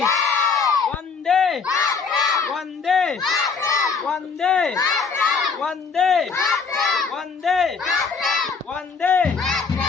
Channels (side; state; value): right; quieter; 5.3 dB